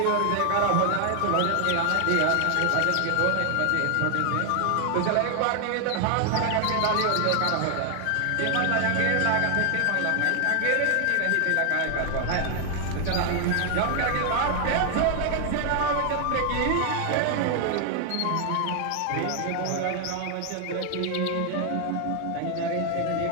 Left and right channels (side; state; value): both; different; correlation 0.00